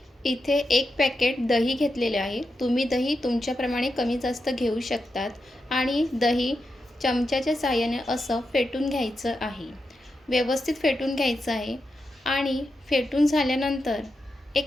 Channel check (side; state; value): both; normal; correlation 0.87